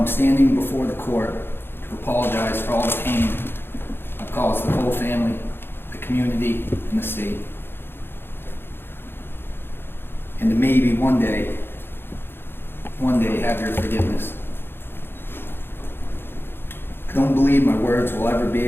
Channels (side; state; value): right; late; 0.11 ms